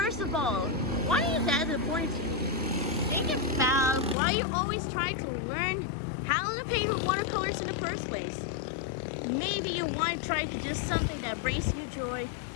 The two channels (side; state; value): right; drops out; at 4.2 s